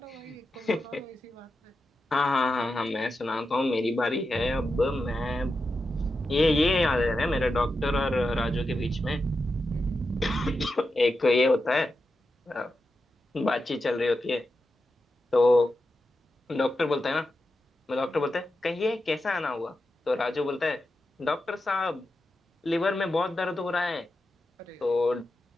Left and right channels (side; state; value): both; normal; correlation 0.89